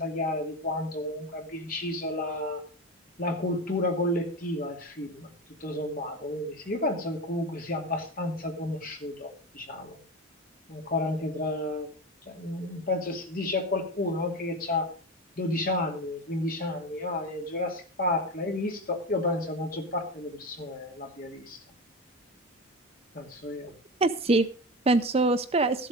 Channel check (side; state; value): both; normal; correlation 0.23